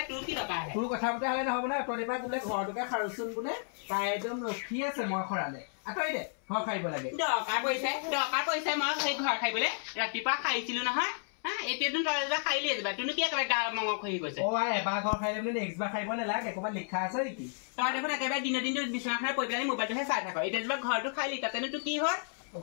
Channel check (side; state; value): right; silent; 56 dB below the other